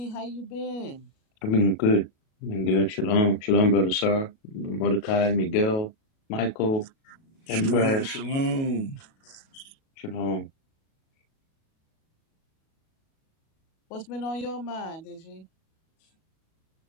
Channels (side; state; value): right; late; 37 ms